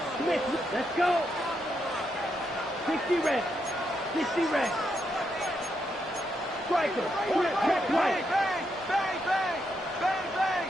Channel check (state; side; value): normal; both; correlation 0.81